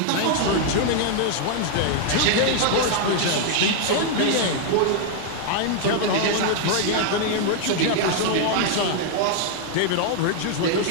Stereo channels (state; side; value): different; both; correlation 0.00